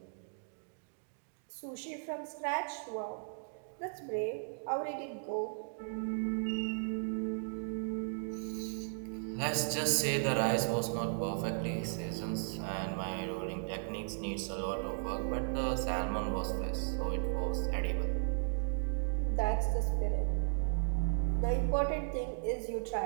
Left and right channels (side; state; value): left; silent; digital silence